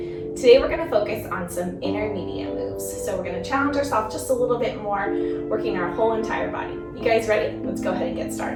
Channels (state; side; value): identical; both; correlation 1.00